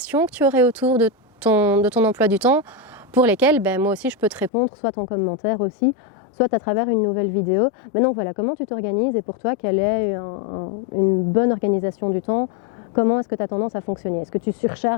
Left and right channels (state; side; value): drops out; right; at 4.5 s